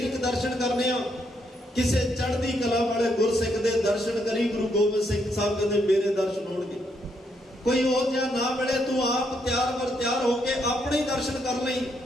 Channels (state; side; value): normal; both; correlation 0.76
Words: ਦਰਸ਼ਨ ਕਰਨੇ ਆ, ਕਿਸੇ ਚੜ੍ਹਦੀ ਕਲਾ ਵਾਲੇ ਗੁਰਸਿੱਖ ਦੇ ਦਰਸ਼ਨ ਕਰੀ। ਗੁਰੂ ਗੋਬਿੰਦ ਸਿੰਘ ਸਾਹਿਬ ਕਹਿੰਦੇ ਮੇਰੇ ਦਰਸ਼ਨ ਹੋਣਗੇ। ਕੋਈ ਉਹ ਜਿਹਾ ਨਾ ਮਿਲੇ ਤੂੰ ਆਪ ਤਿਆਰ ਬਰ ਤਿਆਰ ਹੋ ਕੇ ਆਪਣੇ ਦਰਸ਼ਨ ਕਰ ਲਈ,